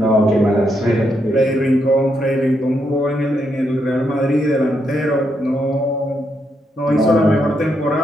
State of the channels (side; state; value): both; normal; correlation 0.79